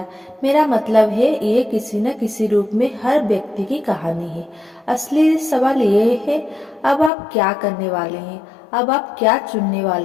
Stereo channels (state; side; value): drops out; right; at 7.1 s